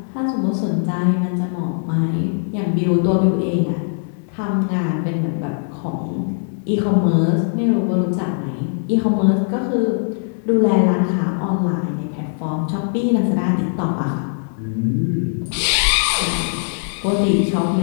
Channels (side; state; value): right; silent; digital silence